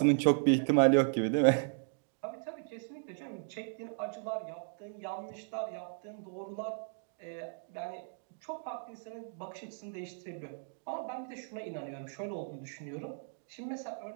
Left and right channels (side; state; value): left; silent; digital silence